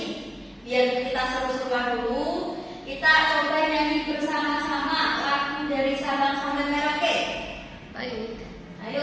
biar kita seru-seruan dulu, kita coba nyanyi bersama-sama lagu dari Sabang sampai Merauke. Baik.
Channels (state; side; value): identical; both; correlation 1.00